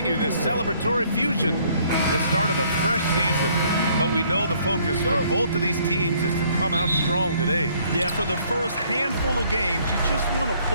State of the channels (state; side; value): inverted; both; correlation -0.63